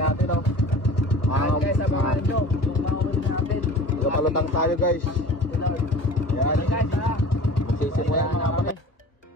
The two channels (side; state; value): right; late; 1.3 ms